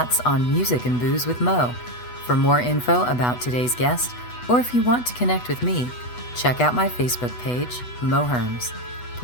on Music and Booze with Mo. For more info about today's guest, or if you want to connect with me, check out my Facebook page, Mo Herms.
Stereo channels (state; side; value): late; right; 8.1 ms